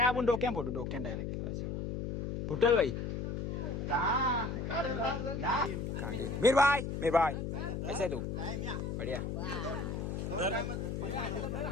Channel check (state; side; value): noise; left; hum, 3 dB below the sound